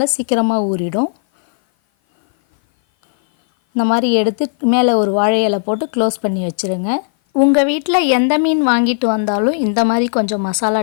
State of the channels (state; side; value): silent; right; 57 dB below the other